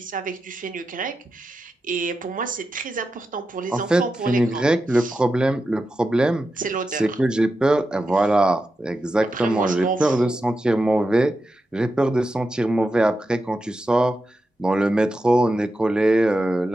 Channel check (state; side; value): normal; both; correlation 0.89